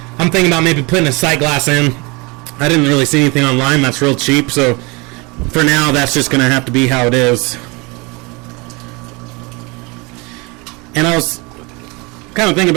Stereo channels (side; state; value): left; quieter; 27.3 dB